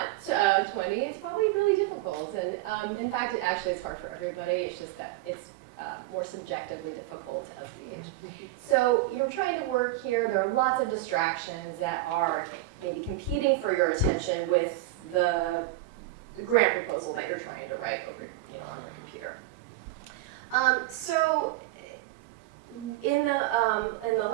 20, it's probably really difficult. And in fact, it actually is hard for everybody. It's just that it's more subjectively difficult as we age. So you're trying to work here. There are lots of distractions that are maybe competing for your attention with the grant proposal that you're trying to write over, on your computer. So in the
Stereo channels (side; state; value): left; quieter; 15.2 dB